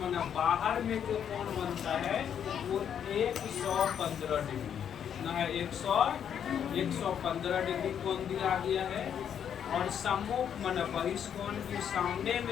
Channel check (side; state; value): right; quieter; 8.6 dB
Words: माने बाहर में जो कोण बनता है वो 115 डिग्री कितना है 115 डिग्री कोण दिया गया है। और सम्मुख माने बहिष्कोण के सामने